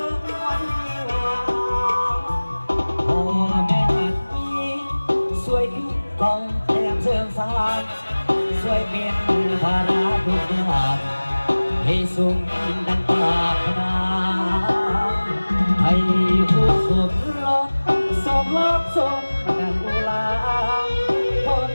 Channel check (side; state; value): both; inverted; correlation -1.00